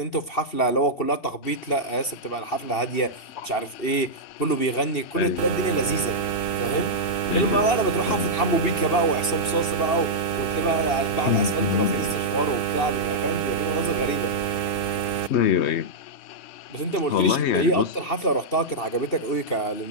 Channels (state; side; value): late; right; 2.7 ms